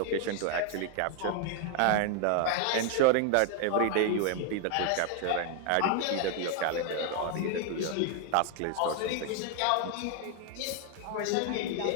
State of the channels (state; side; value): different; both; correlation 0.00